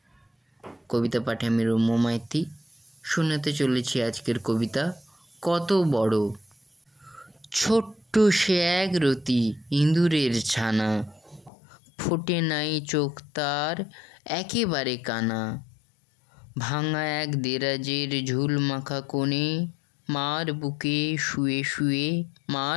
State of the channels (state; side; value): drops out; right; at 11.5 s